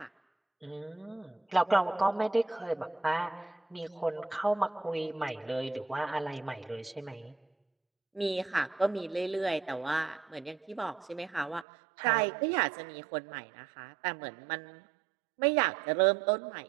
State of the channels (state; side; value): drops out; left; at 11.7 s